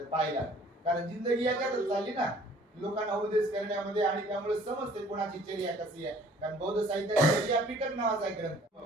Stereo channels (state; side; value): normal; both; correlation 0.55